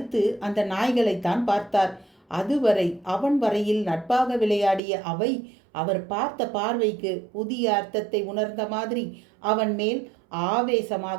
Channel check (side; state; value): left; drops out; at 4.8 s